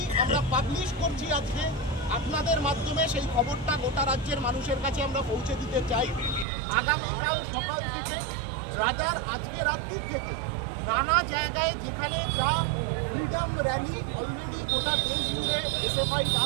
আমরা পাবলিশ করছি আজকে আপনাদের মাধ্যমে। সেই খবরটা গোটা রাজ্যের মানুষের কাছে আমরা পৌঁছে দিতে চাই। আগামীকাল সকাল থেকে রাজার আজকে রাত্রির থেকে নানা জায়গায় যেখানে যা ফ্রিডম র্যালি অলরেডি গোটা দেশ জুড়ে এসএফআই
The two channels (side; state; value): left; drops out; at 6.5 s